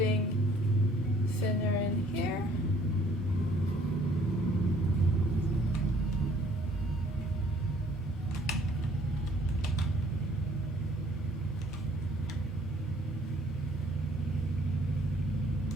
thinner in here.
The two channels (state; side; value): normal; both; correlation 0.59